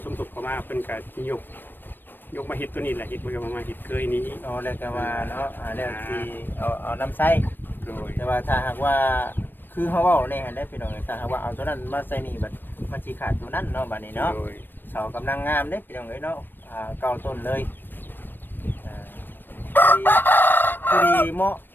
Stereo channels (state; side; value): late; right; 0.094 ms